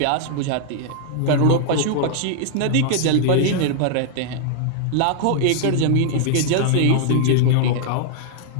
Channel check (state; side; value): different; both; correlation -0.01